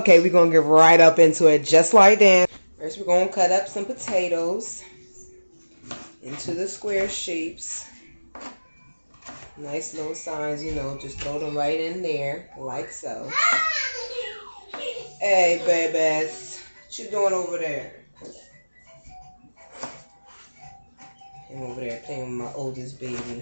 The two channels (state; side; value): inverted; both; correlation -1.00